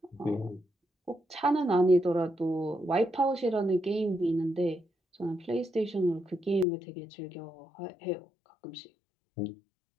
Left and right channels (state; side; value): drops out; right; at 6.7 s